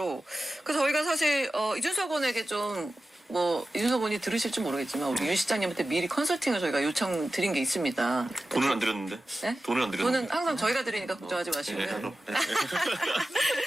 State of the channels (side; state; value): both; normal; correlation 0.94